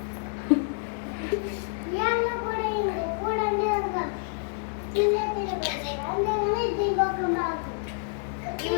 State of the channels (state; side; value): silent; right; 59 dB below the other